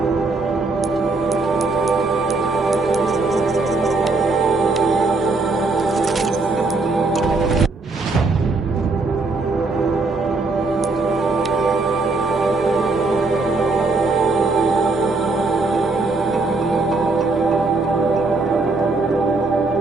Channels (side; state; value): left; quieter; 3.6 dB